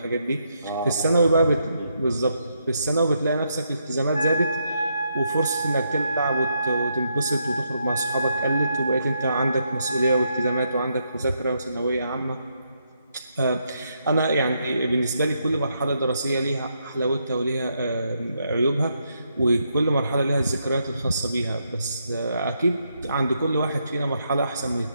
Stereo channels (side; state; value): both; inverted; correlation -0.79